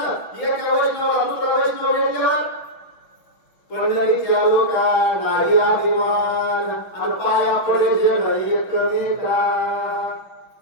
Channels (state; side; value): late; right; 5.8 ms